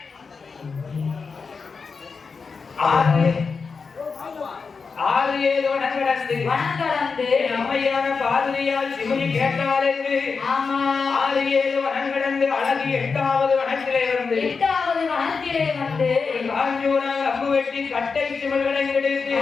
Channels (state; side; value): quieter; right; 5.0 dB